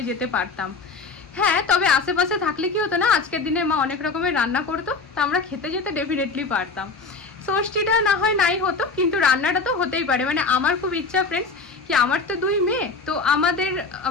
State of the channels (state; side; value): quieter; right; 4.2 dB